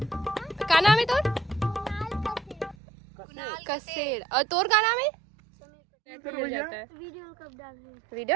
का नाम है तोर कसेर और तोर का नाम है वीडियो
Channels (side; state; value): left; drops out; at 2.8 s